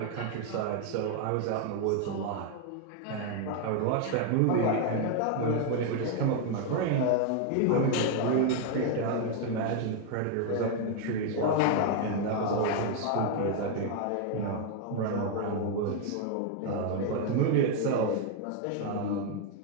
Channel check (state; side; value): different; both; correlation 0.00